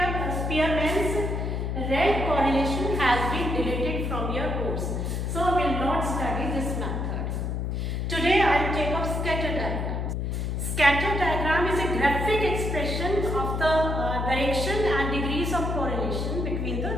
Spearman's rank correlation, has been deleted from your course. So we will not study this method. Today I will take up scatter diagram. Scatter diagram is a graphic expression of the direction and degrees of correlation between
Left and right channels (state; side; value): noise; left; hum, 1 dB below the sound